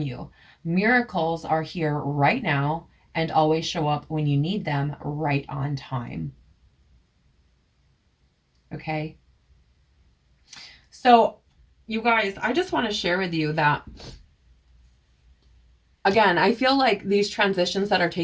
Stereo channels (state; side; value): identical; both; correlation 1.00